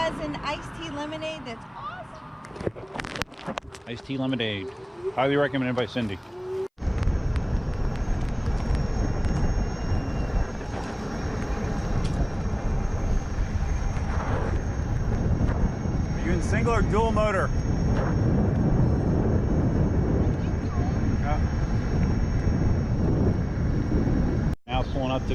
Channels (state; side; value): identical; both; correlation 1.00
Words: an iced tea lemonade that's awesome. Iced tea lemonade. Highly recommended by Cindy. Are you in single or dual motor? Now pulling up